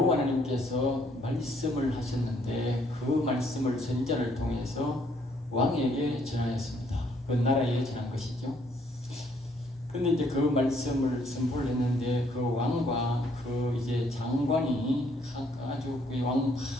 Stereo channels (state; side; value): normal; both; correlation 0.67